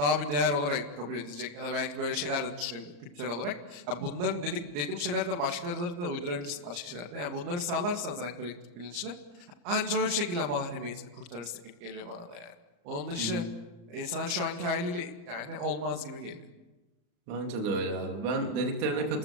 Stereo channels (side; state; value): left; late; 34 ms